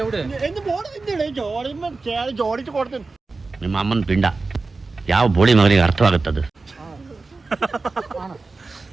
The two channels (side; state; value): left; quieter; 3.8 dB